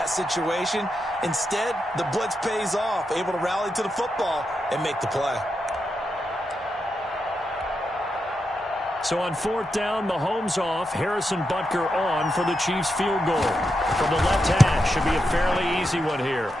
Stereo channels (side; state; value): both; normal; correlation 0.86